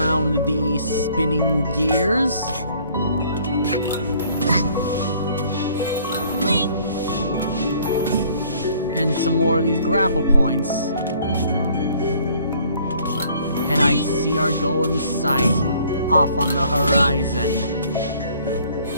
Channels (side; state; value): both; inverted; correlation -0.59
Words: the spinning gears. some more of these grapple points. And I see our goal in sight, off on the horizon.